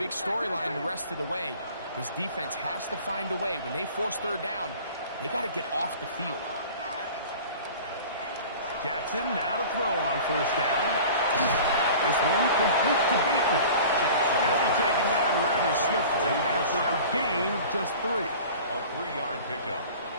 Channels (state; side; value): inverted; both; correlation -0.42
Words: storyline the rest of the way. This defense has to find a way. When they force third down, they got to get off the field. Jackson now to throw on first down. This one complete to Bateman. He'll be taken down rather swiftly after a gain of just 3. A 3-yard pickup